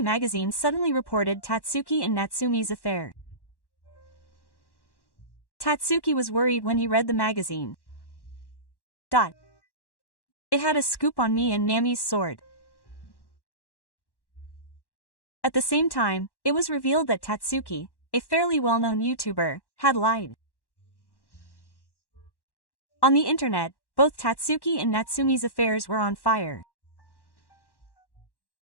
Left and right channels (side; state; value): right; late; 1.1 ms